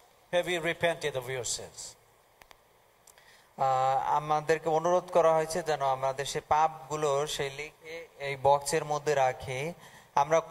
have you repented of your sins? আমাদেরকে অনুরোধ করা হয়েছে যেন আমাদের সেই পাপগুলো সেই লিখে এই বক্সের মধ্যে রাখি। আমরা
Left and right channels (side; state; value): both; identical; correlation 1.00